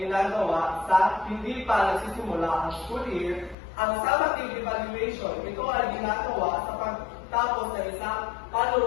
sa hindi pa nagsisimula ang school year. Ang summative evaluation, ito ay ginagawa sa pagtapos ng isang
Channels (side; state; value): right; drops out; at 3.6 s